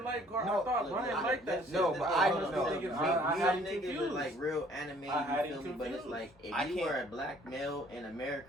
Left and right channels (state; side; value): normal; both; correlation 0.58